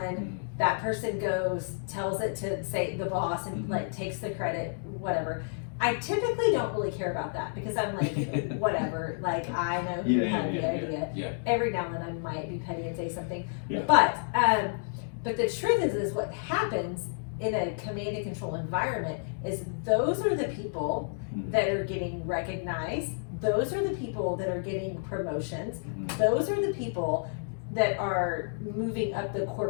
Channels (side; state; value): right; silent; digital silence